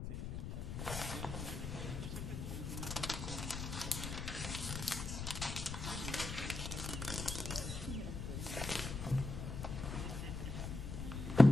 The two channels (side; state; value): left; noise; rumble, 5 dB below the sound